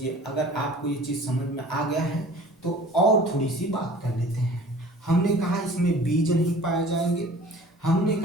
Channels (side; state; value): both; normal; correlation 0.46